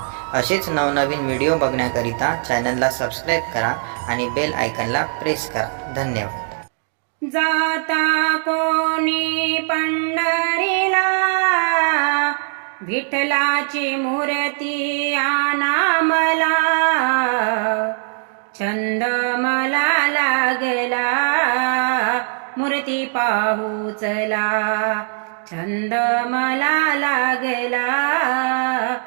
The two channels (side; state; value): left; silent; 60 dB below the other